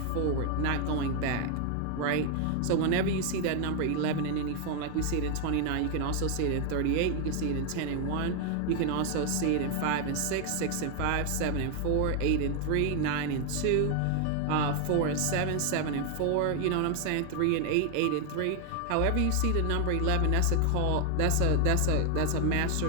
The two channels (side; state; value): both; different; correlation 0.00